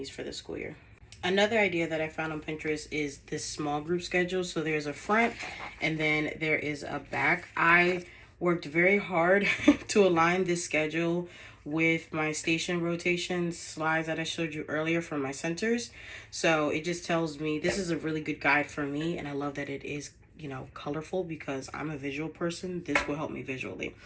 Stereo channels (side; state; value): both; identical; correlation 1.00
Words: for the school year. Another idea that I found on Pinterest is this small group schedule. So there's a front and then there is a back. I worked very hard to align this schedule with my station rotation slides that I showed you earlier from my centers. So it just tells me this is a really good guide for me, and I love that it is, you know, colorful because I'm a visual person. This will help me visually.